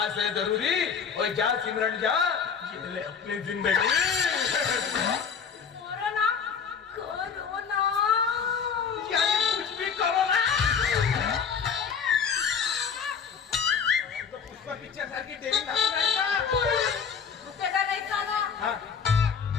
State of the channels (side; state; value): right; quieter; 6.5 dB